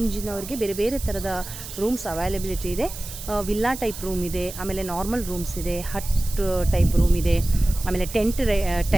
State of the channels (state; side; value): noise; right; hiss, 11 dB below the sound